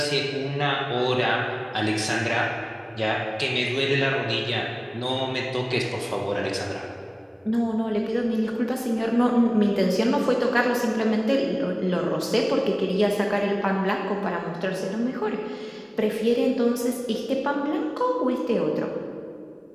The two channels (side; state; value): both; identical; correlation 1.00